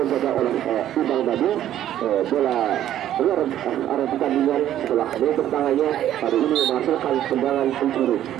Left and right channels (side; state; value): left; quieter; 11.8 dB